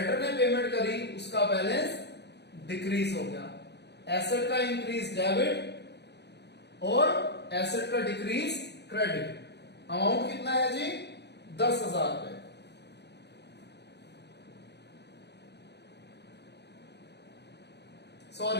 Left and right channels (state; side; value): late; right; 0.49 ms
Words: ने पेमेंट करी उसका बैलेंस डिक्रीज हो गया। एसेट का इंक्रीज डेबिट और एसेट का डिक्रीज क्रेडिट। अमाउंट कितना है जी? 10,000 रुपए।